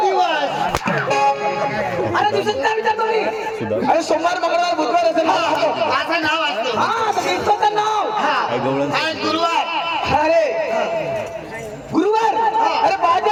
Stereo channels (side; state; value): both; identical; correlation 1.00